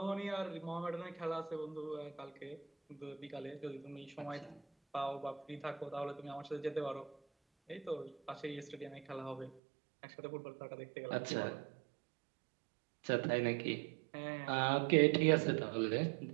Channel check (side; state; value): left; drops out; at 9.6 s